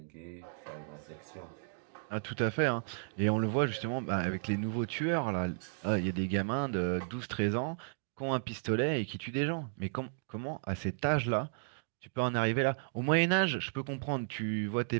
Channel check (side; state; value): left; silent; digital silence